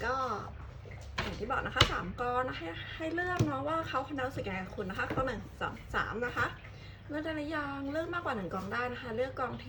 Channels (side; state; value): both; identical; correlation 1.00